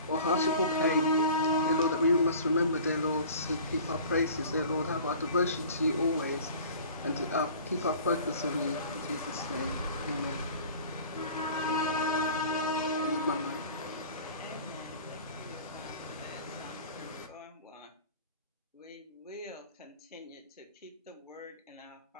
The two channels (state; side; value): inverted; both; correlation -0.44